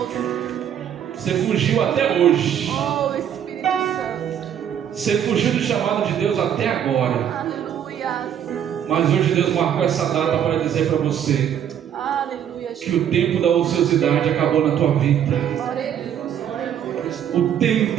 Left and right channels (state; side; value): quieter; left; 9.4 dB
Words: Você fugiu até hoje. Oh, Espírito Santo. Você fugiu do chamado de Deus até agora. Aleluia. Mas hoje Deus marcou essa data para dizer para você Aleluia. que o tempo da ociosidade acabou na tua vida. Glória a Deus. Aleluia. O